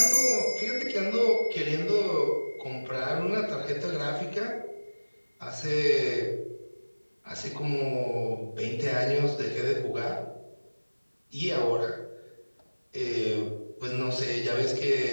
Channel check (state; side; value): inverted; both; correlation -1.00